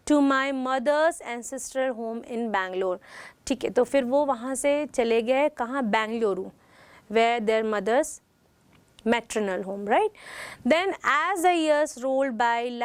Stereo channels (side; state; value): both; identical; correlation 1.00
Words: to my mother's ancestral home in Bangalore. ठीक है, तो फिर वो वहाँ से चले गए कहाँ? Bengaluru, where their mother's maternal home, right? Then as the years rolled by,